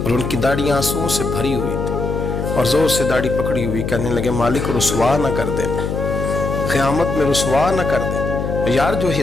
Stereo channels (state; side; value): noise; left; hum, 3 dB below the sound